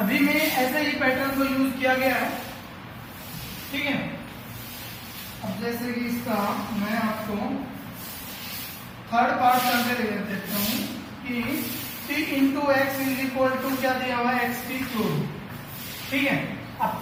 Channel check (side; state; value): both; identical; correlation 1.00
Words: में ऐसे ही पैटर्न को यूज किया गया है। ठीक है, अब जैसे कि इसका मैं आपको थर्ड पार्ट करके दे देता हूं कि P into x is equal to क्या दिया हुआ है एक्स की क्यूब। ठीक है, अब